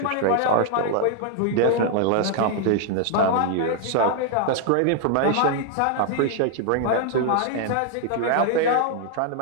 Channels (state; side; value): different; both; correlation 0.00